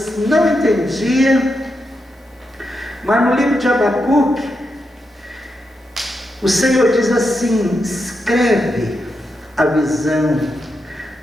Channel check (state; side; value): normal; both; correlation 0.85